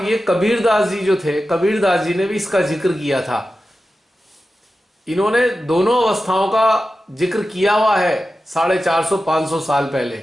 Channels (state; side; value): normal; both; correlation 0.93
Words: ये कबीरदास जी जो थे, कबीरदास जी ने भी इसका जिक्र किया था। इन्होंने दोनों अवस्थाओं का जिक्र किया हुआ है 450-500 साल